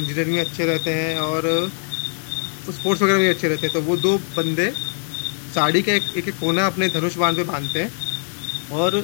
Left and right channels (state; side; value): silent; right; digital silence